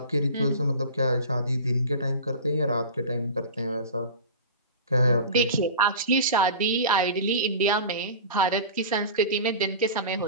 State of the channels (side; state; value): both; inverted; correlation -0.33